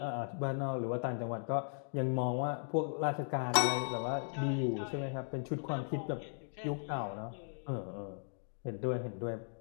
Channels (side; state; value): right; silent; digital silence